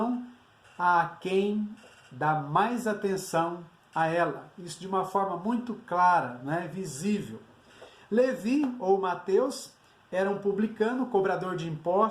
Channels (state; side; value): identical; both; correlation 1.00